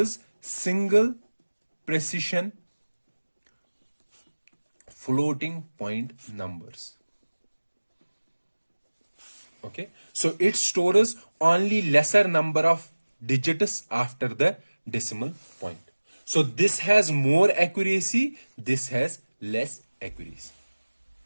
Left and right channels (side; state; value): both; inverted; correlation -1.00